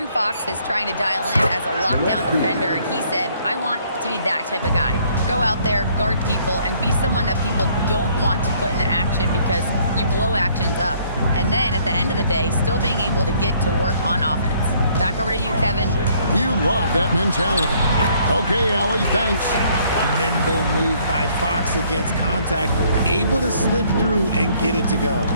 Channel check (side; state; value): both; inverted; correlation -0.64